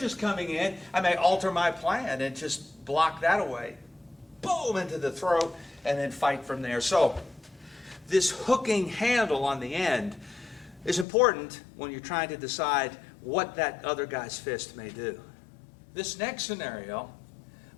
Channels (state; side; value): drops out; right; at 11.1 s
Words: is coming in, I may alter my plan and just block that away. Boom, into the throat, and then fight from there. So, this hooking handle on the end is important when you're trying to decide what that other guy's fist may do. This next scenario